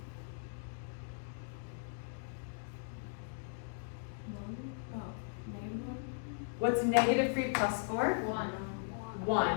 What's -3 plus 4? 1.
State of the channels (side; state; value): right; silent; digital silence